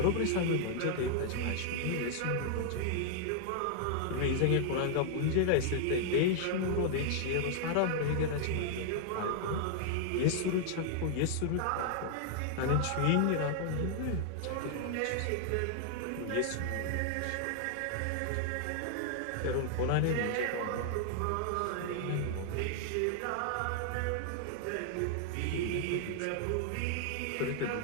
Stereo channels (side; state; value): both; different; correlation 0.00